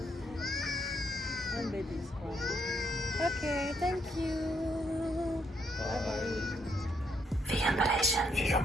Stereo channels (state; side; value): normal; both; correlation 0.75